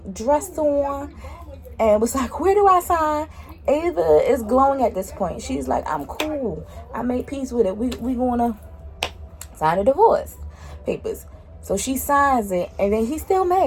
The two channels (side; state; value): both; identical; correlation 1.00